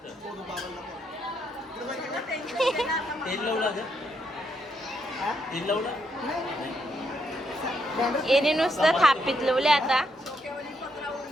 तेल लावला का? हा? तेल लावला येणे नुसतं थापीत लावले आता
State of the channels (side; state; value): both; normal; correlation 0.77